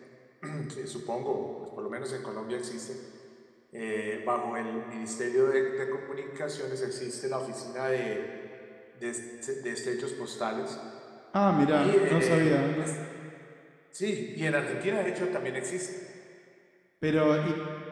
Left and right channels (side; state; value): both; identical; correlation 1.00